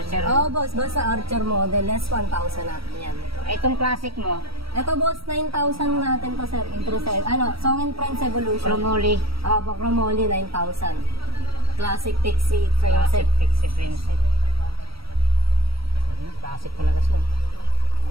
Oo boss, basta Archer model, less 1,000 natin yan. Itong classic mo, Ito boss, 9,000 natin to sir, introduce. Song and Friends Evolution. Promoli. Chromoly, 9,000. Classic Pixie frame Classic set. Pixie frame set. Classic talaga siya.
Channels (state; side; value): late; left; 0.75 ms